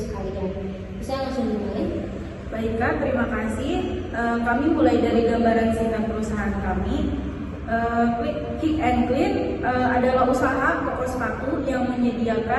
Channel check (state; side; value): identical; both; correlation 1.00